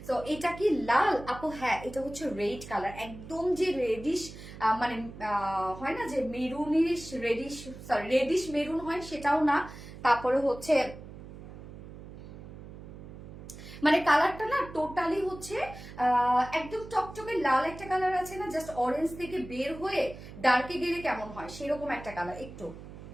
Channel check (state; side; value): noise; right; hum, 14 dB below the sound